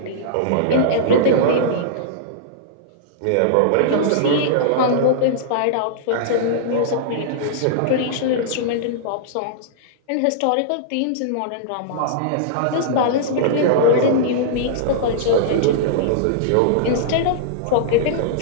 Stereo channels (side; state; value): both; different; correlation -0.02